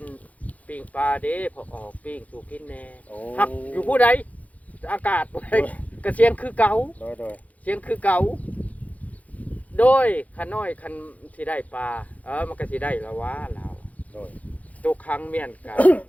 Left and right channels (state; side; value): late; right; 0.072 ms